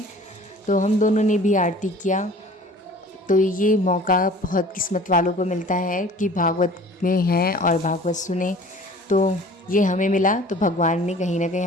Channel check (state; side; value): normal; both; correlation 0.47